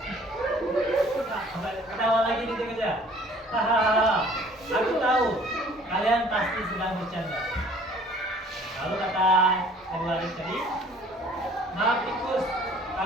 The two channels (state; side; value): normal; both; correlation 0.53